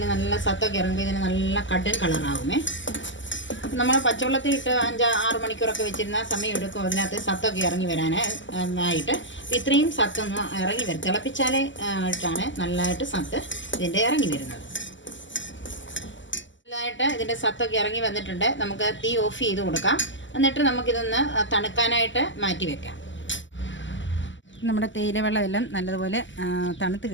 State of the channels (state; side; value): late; right; 0.54 ms